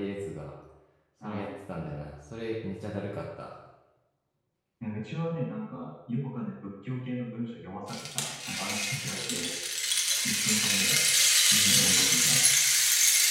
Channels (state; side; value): identical; both; correlation 1.00